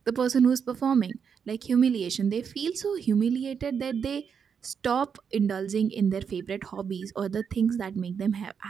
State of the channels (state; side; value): quieter; left; 6.8 dB